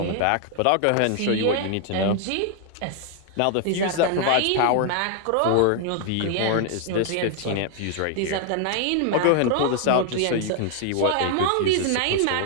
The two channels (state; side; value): different; both; correlation 0.00